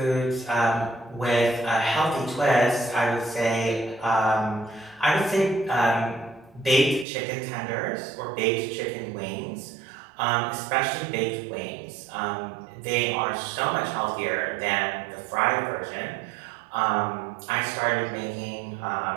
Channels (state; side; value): drops out; left; at 7.1 s